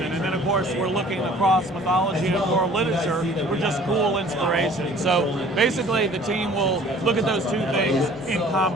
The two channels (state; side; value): normal; both; correlation 0.51